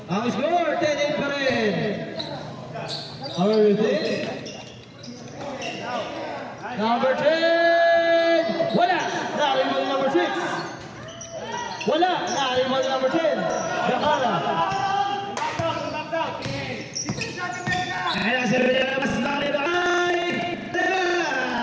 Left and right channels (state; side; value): identical; both; correlation 1.00